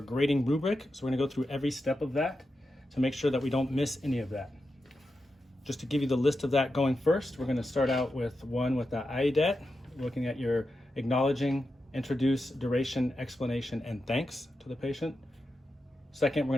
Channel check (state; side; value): normal; both; correlation 0.89